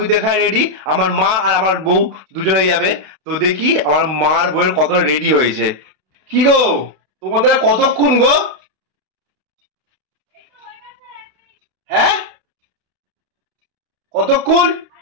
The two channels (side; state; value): left; late; 32 ms